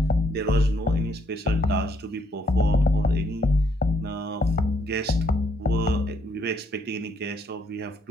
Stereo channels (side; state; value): both; normal; correlation 0.71